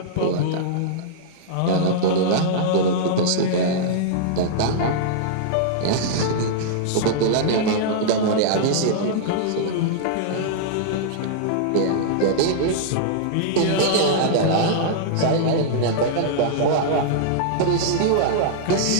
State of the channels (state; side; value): different; both; correlation -0.02